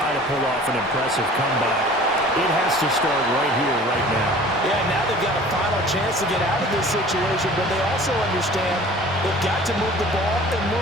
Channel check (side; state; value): both; normal; correlation 0.46